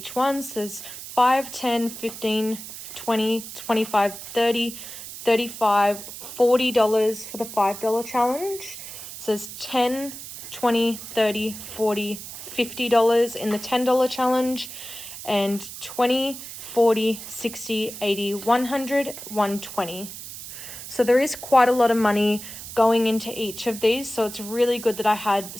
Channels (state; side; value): noise; right; hiss, 11 dB below the sound